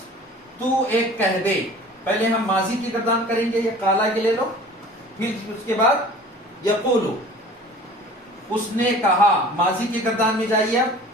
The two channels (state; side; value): normal; both; correlation 0.45